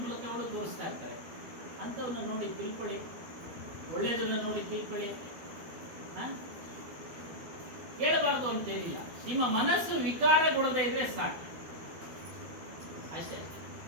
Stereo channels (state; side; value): late; left; 12 ms